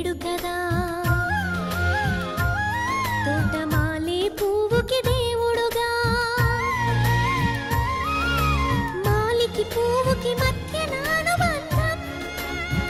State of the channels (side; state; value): both; identical; correlation 1.00